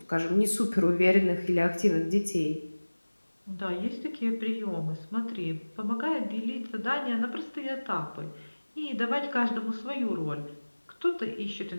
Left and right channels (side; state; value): both; inverted; correlation -1.00